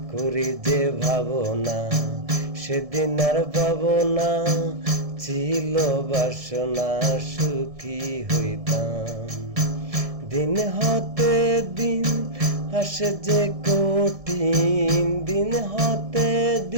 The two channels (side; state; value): left; late; 1.7 ms